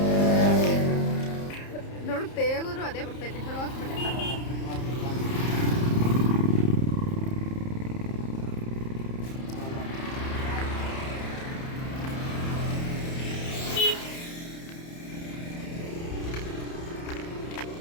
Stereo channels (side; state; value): right; late; 30 ms